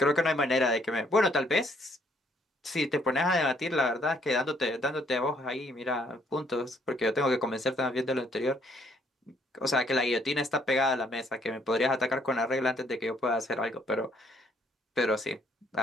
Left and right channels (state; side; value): normal; both; correlation 0.67